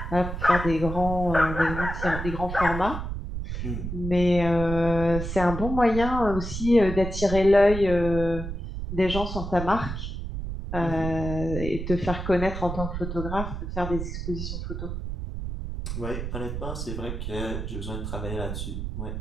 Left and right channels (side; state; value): right; noise; rumble, 5 dB below the sound